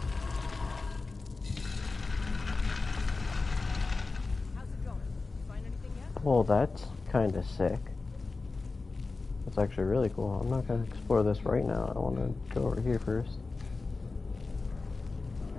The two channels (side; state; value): right; quieter; 3.8 dB